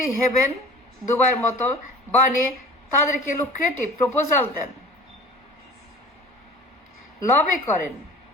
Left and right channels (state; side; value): normal; both; correlation 0.42